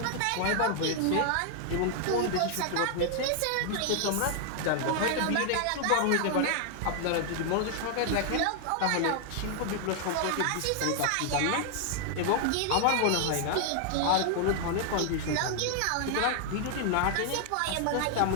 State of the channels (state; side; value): different; both; correlation 0.00